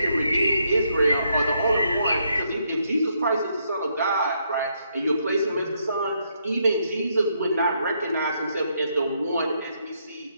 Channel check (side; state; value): both; inverted; correlation -0.75